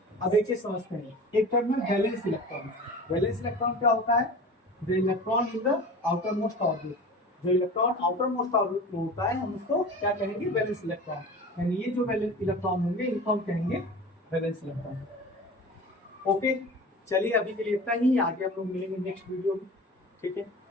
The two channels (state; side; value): normal; both; correlation 0.36